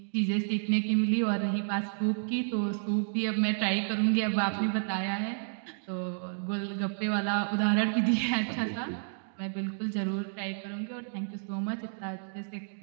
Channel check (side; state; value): left; silent; digital silence